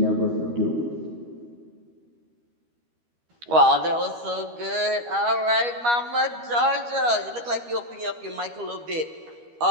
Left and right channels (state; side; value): late; left; 13 ms